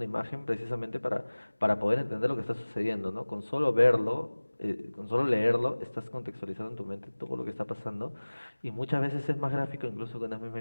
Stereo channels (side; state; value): both; inverted; correlation -1.00